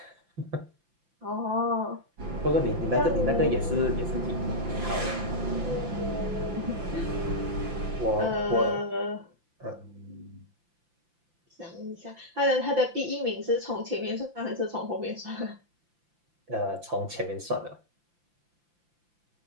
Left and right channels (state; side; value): late; left; 5.8 ms